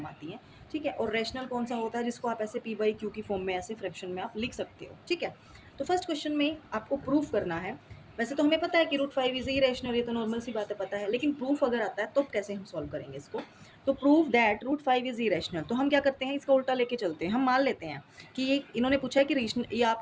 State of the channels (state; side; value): identical; both; correlation 1.00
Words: आती हैं। ठीक है, और रैशनल कौन सा होता है जिसको आप ऐसे पी बाई क्यू की फॉर्म में ऐसे फ्रैक्शन में आप लिख सकते हो। ठीक है, तो फर्स्ट क्वेश्चन में आपको प्रूफ करना है। वैसे तो हमें पता है कि रूट 5 इज इरेशनल, ये तो नॉर्मल सी बात है, पता है, लेकिन प्रूफ अगर आता है तो कैसे हम सॉल्व करेंगे इसको। तो proof that root 5 is irrational, तो हम क्या करते हैं, इसका उल्टा लेके चलते हैं। हम मान लेते हैं कि ये इन्होंने पूछा है कि ये